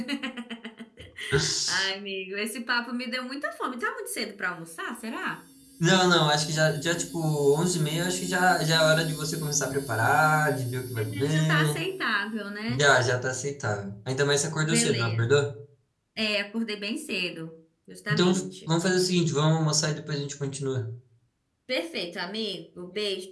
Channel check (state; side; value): identical; both; correlation 1.00